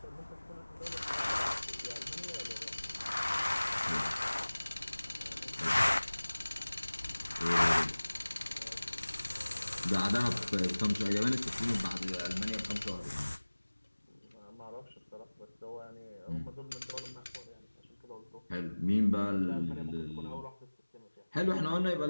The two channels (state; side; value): inverted; both; correlation -1.00